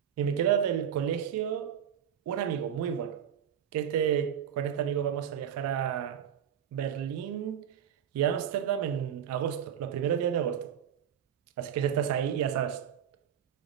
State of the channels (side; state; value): left; quieter; 9.0 dB